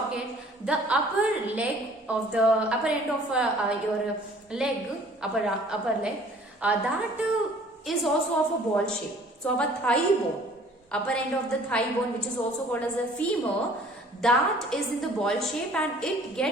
the upper end of your leg, upper leg, that is also of a ball shape. So our thigh bone, upper end of the thigh bone, which is also called as a femur, that is in the ball shape, and it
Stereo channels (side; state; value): both; normal; correlation 0.53